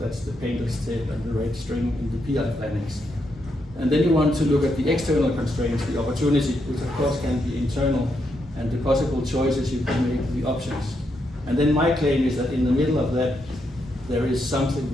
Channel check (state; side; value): normal; both; correlation 0.80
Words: the painter's tape and the red string in the PI plannings. And then you want to look at the external constraints, the opportunity, which of course can be internal, and the possible choices you can make, the options. And then my claim is that in the middle of that, there is something